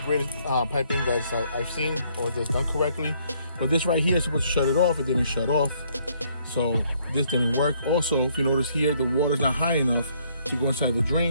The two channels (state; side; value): inverted; both; correlation -0.67